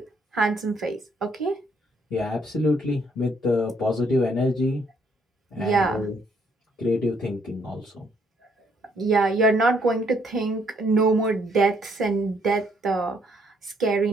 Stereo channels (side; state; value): both; normal; correlation 0.69